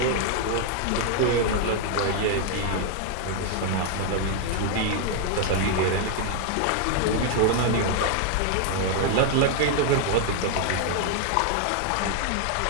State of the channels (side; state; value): both; different; correlation 0.00